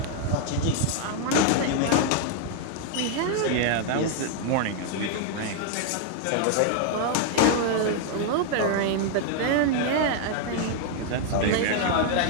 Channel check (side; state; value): both; different; correlation 0.00